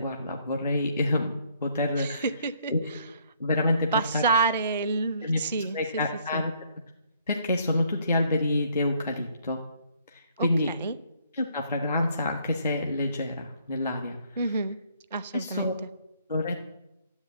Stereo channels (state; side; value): inverted; both; correlation -0.65